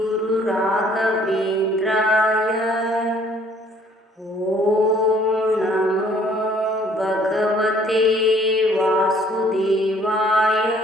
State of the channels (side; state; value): both; normal; correlation 0.59